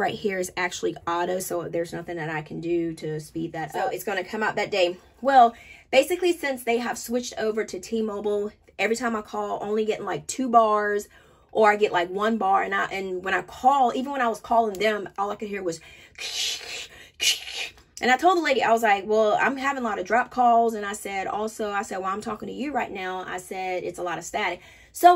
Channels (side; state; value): both; identical; correlation 1.00